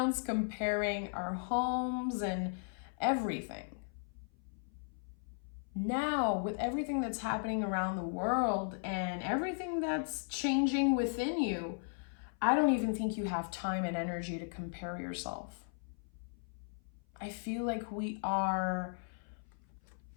comparing our homes and everything. Now, with everything that's happening around the world and everything that's changing within you, I don't even think you have time and energy to compare yourself. I feel like we are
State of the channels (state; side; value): silent; right; 53 dB below the other